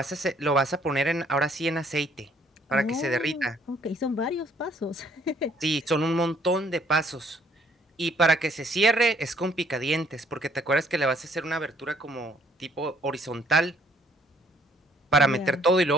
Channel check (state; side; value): normal; both; correlation 0.63